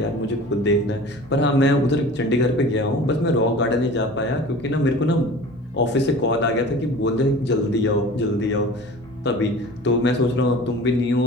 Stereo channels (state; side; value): normal; both; correlation 0.40